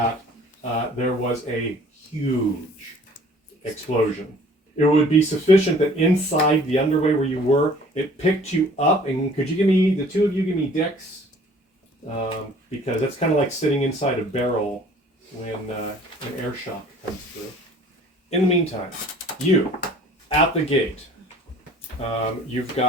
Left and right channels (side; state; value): both; normal; correlation 0.52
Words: there was a huge explosion. It would be sufficient that inside the underway where you were, it picked you up. And could you give me, the two of you, give me Dex? Because that's kind of like sitting inside a barrel when an air shock comes through. In the meantime, you, at the gate, you've